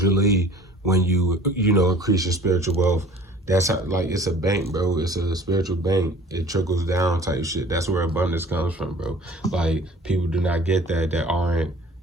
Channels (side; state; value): both; normal; correlation 0.47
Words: when you, increase your spiritual wealth, that's how, like, it's a bank, bro. It's a spiritual bank. It trickles down type shit. That's where abundance comes from, bro. Like, people do not get that aren't,